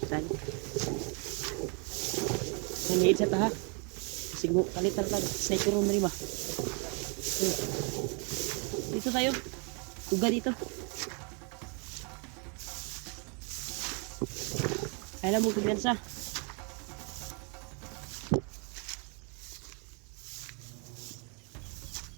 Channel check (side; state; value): left; quieter; 35.6 dB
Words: Saan? Nangiid sa taha. Kasi kalitan ka. Sniper room na rin ba? Dito tayo. Tuga dito. Kailan mo kumpiyansa?